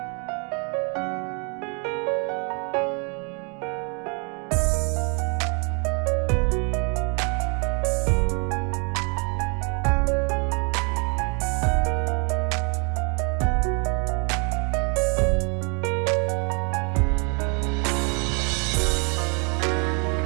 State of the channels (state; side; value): quieter; left; 36.2 dB